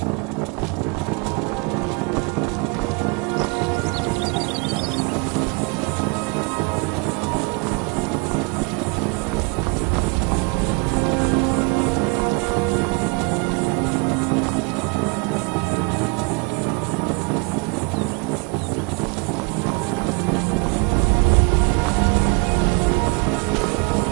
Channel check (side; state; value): left; quieter; 31.1 dB